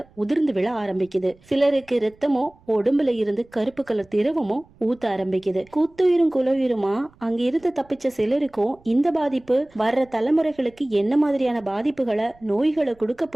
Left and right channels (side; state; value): right; noise; rumble, 29 dB below the sound